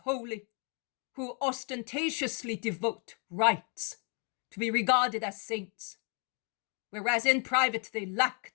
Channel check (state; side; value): quieter; right; 36.9 dB